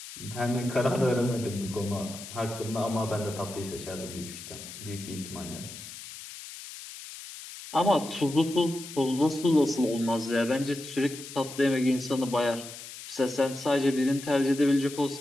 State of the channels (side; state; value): left; noise; hiss, 13 dB below the sound